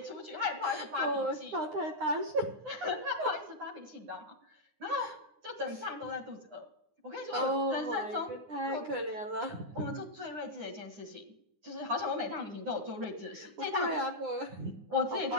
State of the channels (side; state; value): left; late; 9.8 ms